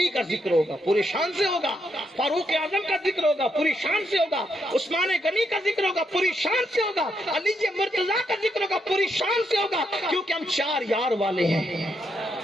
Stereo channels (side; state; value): both; normal; correlation 0.79